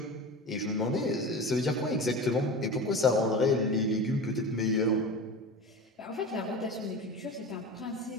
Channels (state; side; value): normal; both; correlation 0.31